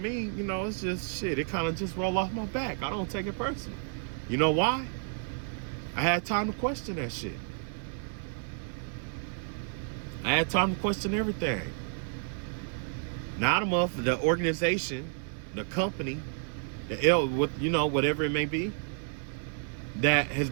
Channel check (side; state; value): left; silent; digital silence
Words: it's just shit. It kind of just roll off my back. I don't take it personal. You know why? I had time to question that shit. I had time to question everything. Now the organization, the company, whatever it may be, that has